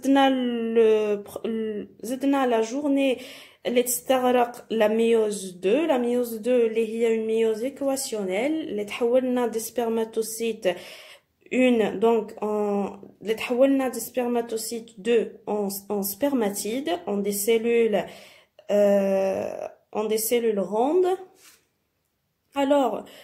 زدنا لا جورني اللي تستغرق لا ميوز 2. لا ميوز 2 اللي هي اون ميوز ايكواسيونيل اللي تحولنا دي سبرماتوسيت une donc les تحولنا des spermatocytes 2 en spermatides en des cellules rondes. Alors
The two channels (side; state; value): both; identical; correlation 1.00